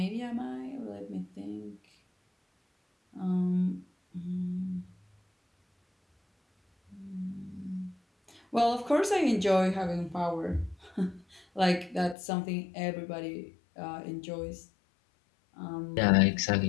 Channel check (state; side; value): drops out; right; at 12.2 s